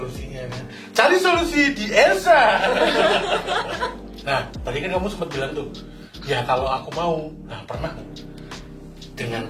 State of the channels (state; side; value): identical; both; correlation 1.00